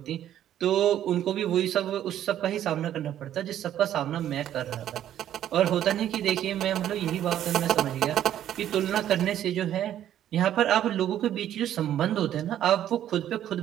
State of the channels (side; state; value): left; quieter; 11.3 dB